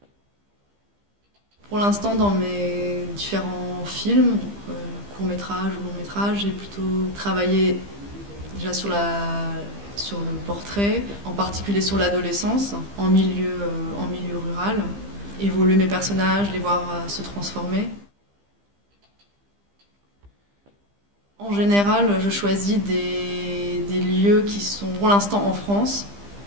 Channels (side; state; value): left; late; 15 ms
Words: Pour l'instant, dans mes différents films, courts-métrages ou longs-métrages, j'ai plutôt travaillé déjà sur le portrait, en particulier sur l'adolescence, en milieu rural, évoluer mes personnages, les voir se transformer. En général, je choisis des lieux qui sont pour l'instant en France,